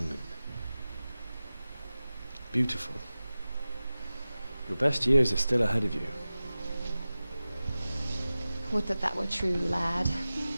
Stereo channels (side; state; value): both; inverted; correlation -0.95